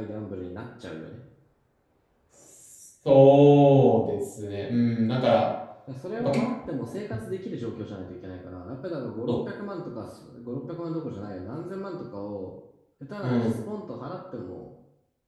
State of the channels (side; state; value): both; identical; correlation 1.00